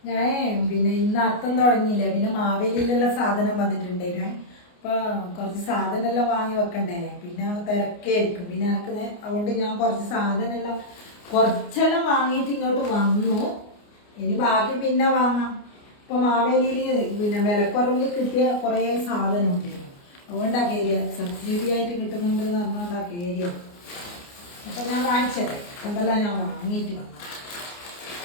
ഞാൻ പിന്നെ ഇന്ന് അത്തം തുടങ്ങിയില്ലേ, പിന്നെ മാവേലിയിലുള്ള സാധനം വന്നിട്ടുണ്ടായിരുന്നു. അപ്പൊ കുറച്ച് സാധനമെല്ലാം വാങ്ങി വെക്കണ്ടേ, പിന്നെ തിരക്കായിരിക്കും. പിന്നെ എനിക്ക് അതുകൊണ്ട് ഞാൻ കുറച്ചെല്ലാം വാങ്ങിയിട്ട് ഇങ്ങോട്ട് വന്നു. ഇനി ബാക്കി പിന്നെ വാങ്ങാം. ഇപ്പൊ മാവേലിയിൽ പിന്നെ വിലക്കുറവിൽ കിട്ടിയ കുറേ സാധനം ഉണ്ടായിരുന്നു. അതുകൊണ്ടാ കയറിയ, സബ്സിഡി ആയിട്ട് കിട്ടുന്നുണ്ട് എന്ന് പറഞ്ഞുകൊണ്ടാ കയറിയ. അപ്പൊ ഞാൻ കാണിച്ചത് എന്തെല്ലാം ഞാൻ വാങ്ങിയിട്ട് വന്നു.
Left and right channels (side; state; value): right; late; 29 ms